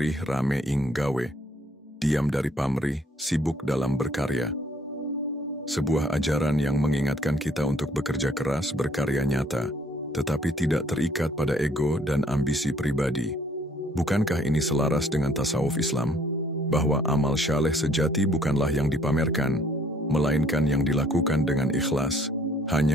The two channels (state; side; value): normal; both; correlation 0.62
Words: rame ing gawe. Diam dari pamrih, sibuk dalam berkarya. Sebuah ajaran yang mengingatkan kita untuk bekerja keras, berkarya nyata, tetapi tidak terikat pada ego dan ambisi pribadi. Bukankah ini selaras dengan tasawuf Islam? Bahwa amal syaleh sejati bukanlah yang dipamerkan, melainkan yang dilakukan dengan ikhlas,